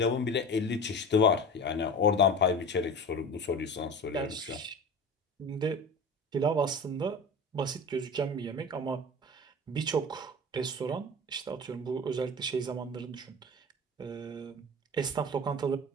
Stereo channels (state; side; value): normal; both; correlation 0.33